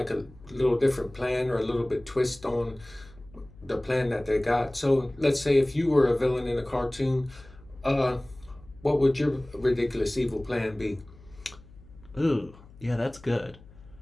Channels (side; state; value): left; noise; hum, 22 dB below the sound